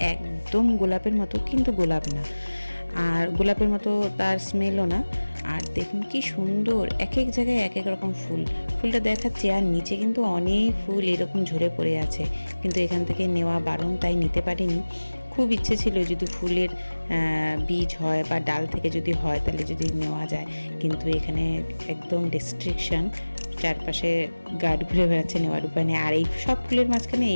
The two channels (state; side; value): inverted; both; correlation -1.00